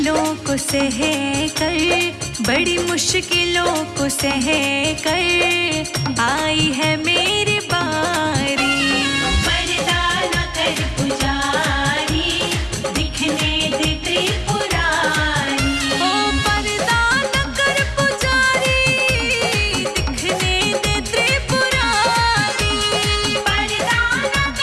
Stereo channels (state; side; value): identical; both; correlation 1.00